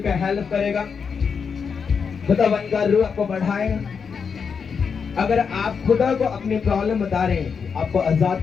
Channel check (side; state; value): right; quieter; 6.1 dB